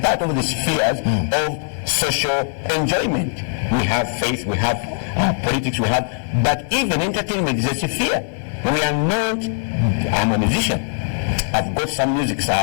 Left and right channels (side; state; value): right; silent; digital silence